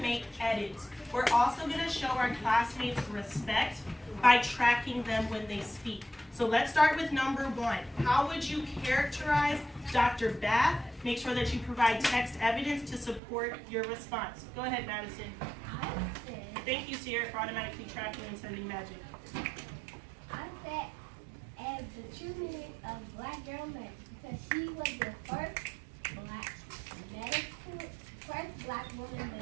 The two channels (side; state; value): left; drops out; at 13.2 s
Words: edits. We're also going to show our classmates respect by tracking them when they speak. So let's start with number 1. How would you characterize Dr. Bath? Make sure that you provide text evidence to support your response. Go ahead, Madison. Thank you, Sierra, for automatically tracking and sending magic. I said as the true meaning of black girl magic because she was the first black woman